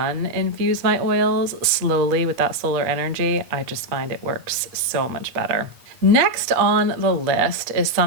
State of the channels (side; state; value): left; late; 8.3 ms